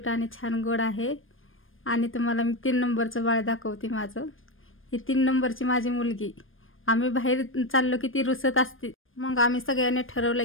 आणि छान गोड आहे. आणि तुम्हाला मी 3 नंबरचं बाळ दाखवते माझं. ही 3 नंबरची माझी मुलगी. आम्ही बाहेर चाललो की ती रुसत असते, मग आम्ही सगळ्यांनी ठरवलं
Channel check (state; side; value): late; right; 0.59 ms